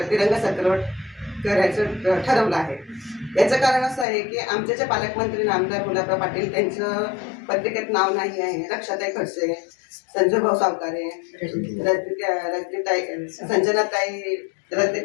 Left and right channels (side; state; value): right; drops out; at 4.0 s